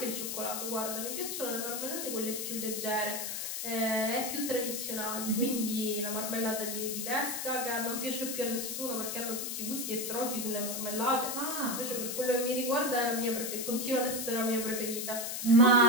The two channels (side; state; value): left; noise; hiss, 4 dB below the sound